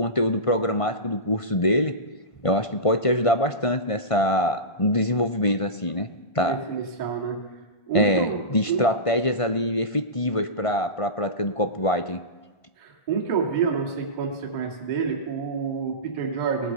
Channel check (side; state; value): right; late; 1.5 ms